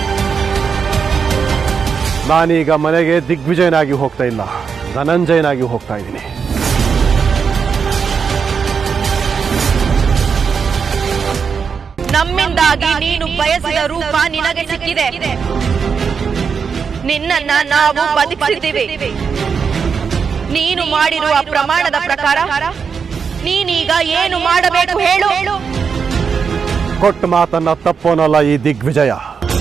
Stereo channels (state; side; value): quieter; left; 6.1 dB